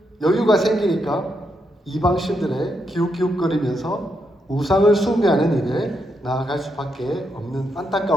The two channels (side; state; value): both; normal; correlation 0.81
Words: 여유가 생기니까 이방신들의 기웃기웃거리면서 우상을 숭배하는 일에 나아갈 수밖에 없는